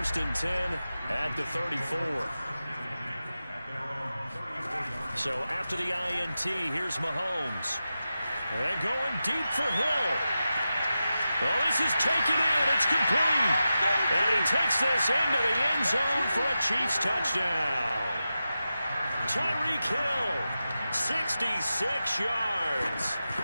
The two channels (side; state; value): both; inverted; correlation -0.92